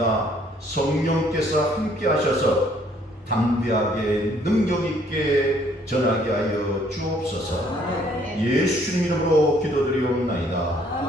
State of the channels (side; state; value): both; normal; correlation 0.63